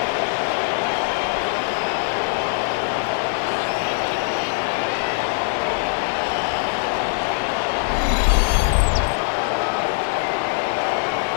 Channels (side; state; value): right; silent; digital silence